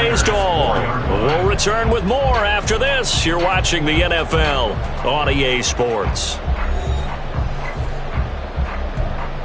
to all. We'll return with more after this. You're watching the NFL on EA Sports.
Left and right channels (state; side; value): identical; both; correlation 1.00